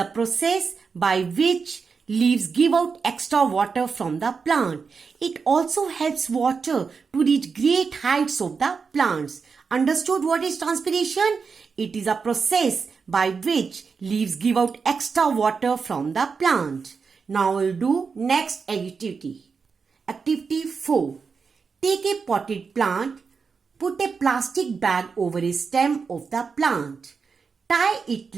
process by which leaves give out extra water from the plant. It also helps water to reach great heights of the plants. Understood what is transpiration? It is a process by which leaves give out extra water from the plant. Now we'll do next activity. Activity 4. Take a potted plant. Put a plastic bag over a stem of the plant. Tie it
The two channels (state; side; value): quieter; left; 5.3 dB